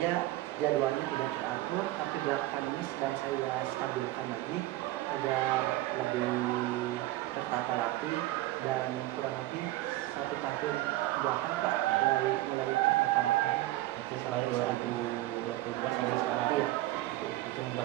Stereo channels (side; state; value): left; quieter; 16.7 dB